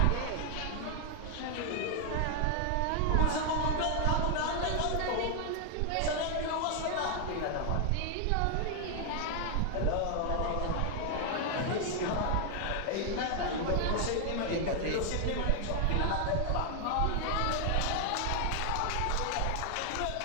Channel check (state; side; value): different; both; correlation 0.00